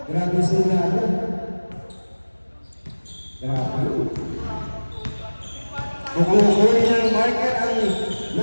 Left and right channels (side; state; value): both; inverted; correlation -1.00